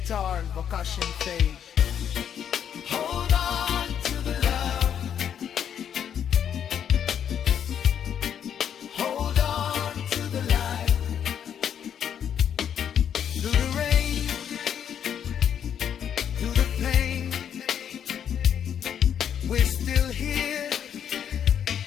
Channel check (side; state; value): right; quieter; 8.8 dB